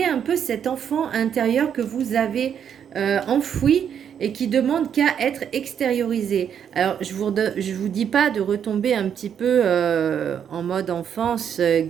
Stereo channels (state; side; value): quieter; left; 8.4 dB